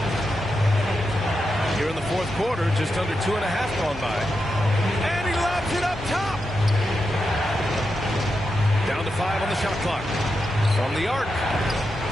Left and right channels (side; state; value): both; normal; correlation 0.87